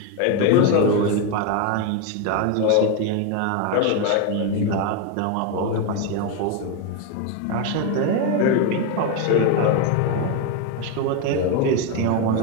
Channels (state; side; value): different; both; correlation 0.02